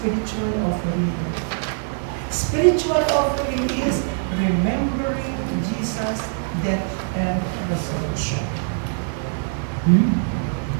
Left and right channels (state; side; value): silent; left; 64 dB below the other